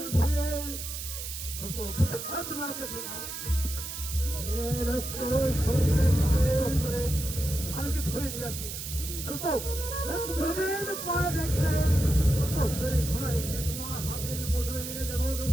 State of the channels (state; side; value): noise; right; hiss, 7 dB below the sound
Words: ফিরে দোস্ত, তুমি আমাকে ছেড়ে দাও। করে শালকে ধরে নিয়ে আসি দোস্ত। দুদিন পরে দেখবে তোদের ঘোড়ায় গিয়ে তোমার হাতের মুঠো এনে দেবো